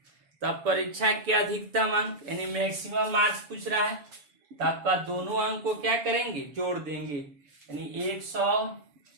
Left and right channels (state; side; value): late; left; 7.0 ms